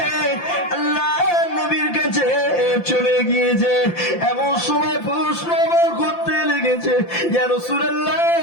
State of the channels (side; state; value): right; late; 5.8 ms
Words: আল্লাহ নবীর কাছে চলে গিয়েছে। এমন সময় প্রশ্ন করতে লেগেছে, ইয়া রাসূলুল্লাহ,